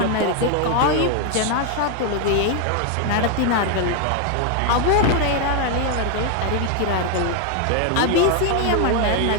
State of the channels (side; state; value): both; different; correlation 0.01